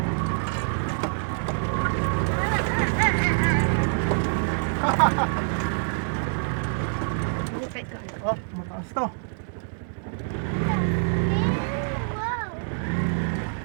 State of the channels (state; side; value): silent; left; digital silence